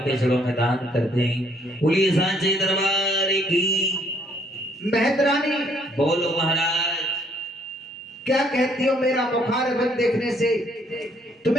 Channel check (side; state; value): both; normal; correlation 0.66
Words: चरणों में दान करते हैं। बोलिए सांचे दरबार की। मेहतरानी, बोलो महाराज। क्या कहती हो, मेरा बुखार बंद देखने से